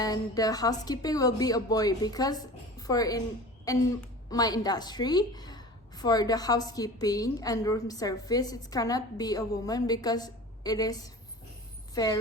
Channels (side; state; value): both; normal; correlation 0.38